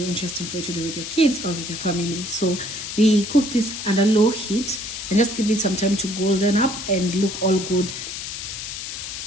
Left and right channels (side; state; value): left; noise; hiss, 7 dB below the sound